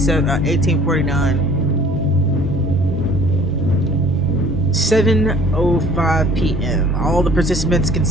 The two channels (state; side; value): normal; both; correlation 0.51